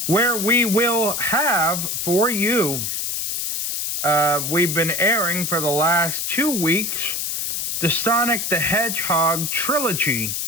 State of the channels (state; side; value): noise; left; hiss, 1 dB below the sound